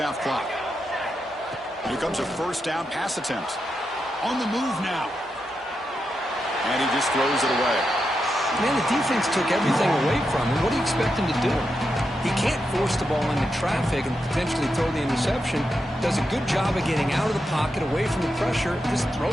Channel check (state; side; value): normal; both; correlation 0.86